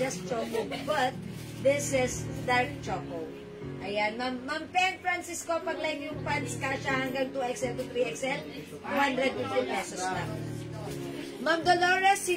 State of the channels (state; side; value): identical; both; correlation 1.00